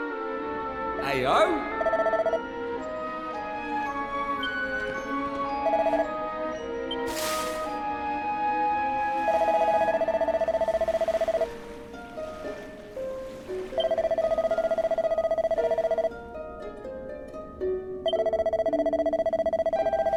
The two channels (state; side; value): identical; both; correlation 1.00